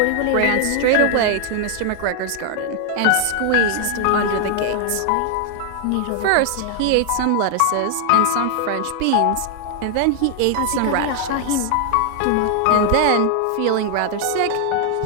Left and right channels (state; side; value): different; both; correlation 0.00